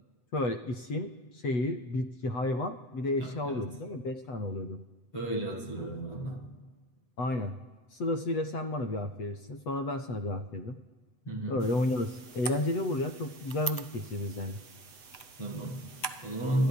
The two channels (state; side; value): late; right; 8.1 ms